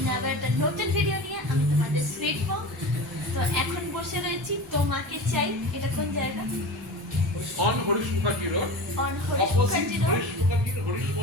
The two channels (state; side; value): normal; both; correlation 0.31